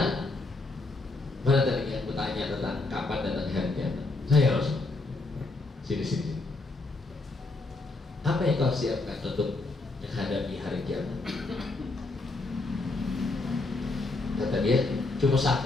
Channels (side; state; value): right; quieter; 3.2 dB